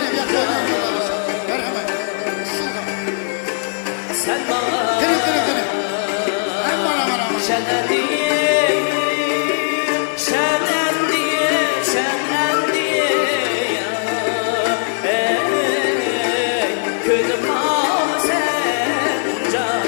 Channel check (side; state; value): right; silent; digital silence